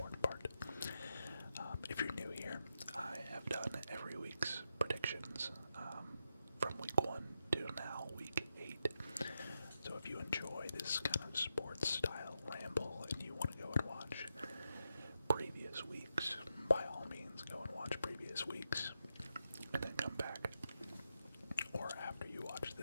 part. If you're new here, I have done every week's predictions from week 1 to now week 8. So if you enjoy this kind of sports style ramble and you want to go and watch previous weeks, by all means go and watch previous weeks and then come back. Or after you watch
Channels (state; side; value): inverted; both; correlation -0.86